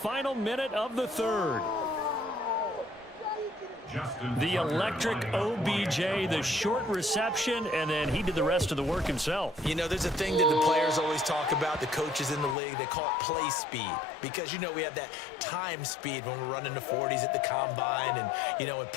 minute of the third. The electric OBJ, the short reception, and then he did the rest of the work himself. You know, there's a thing that the players always talk about, the coaches in the league, they call it play speed. Because, you know, we have that time speed when we're running the 40s at the combine and, you know, at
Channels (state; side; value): drops out; right; at 12.6 s